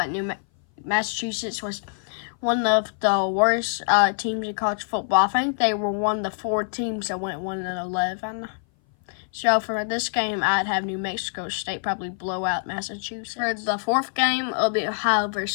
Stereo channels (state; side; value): silent; right; 58 dB below the other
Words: Massachusetts was one of the worst teams in college football. I think they were one of the 4 teams that went 1-11. So for this game, I'd have New Mexico State probably blow out Massachusetts. For the 4th game, it'll be Ohio